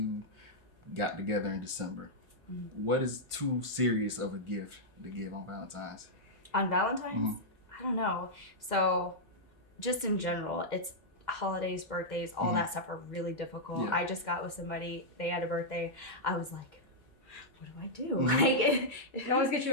got together in December. Mm-hmm. What is too serious of a gift to give on Valentine's? On Valentine's? Mhm. I don't know. So just in general, it's holidays, birthdays, all Mhm. that stuff are really difficult. Yeah. I just got with somebody, they had a birthday. I was like, what do I do? Mhm. Like, It always gets you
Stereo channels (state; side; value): normal; both; correlation -0.07